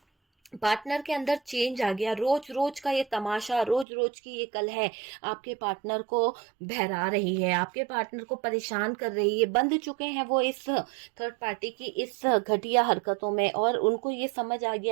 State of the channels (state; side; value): drops out; left; at 3.9 s